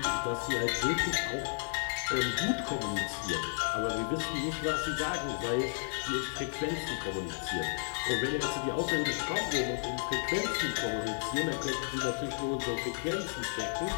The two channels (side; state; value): right; silent; digital silence